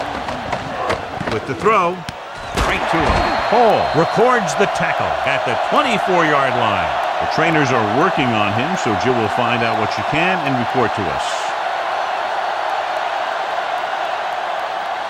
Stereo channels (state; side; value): identical; both; correlation 1.00